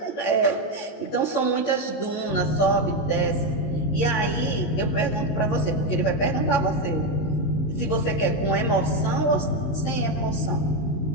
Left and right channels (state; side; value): late; right; 19 ms